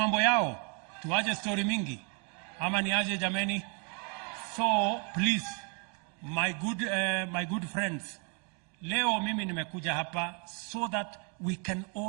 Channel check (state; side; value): quieter; left; 37.1 dB